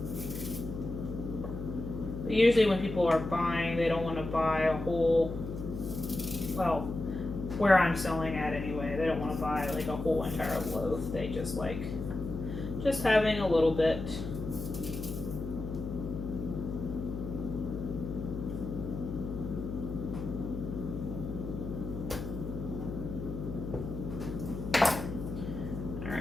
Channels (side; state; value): left; noise; hum, 7 dB below the sound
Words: But usually when people are buying, they don't want to buy a whole, well, where I'm selling at anyway, they don't want to buy like a whole entire loaf. They just like just having a little bit.